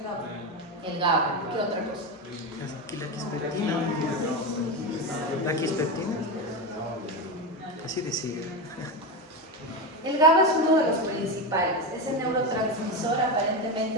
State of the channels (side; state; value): both; normal; correlation 0.16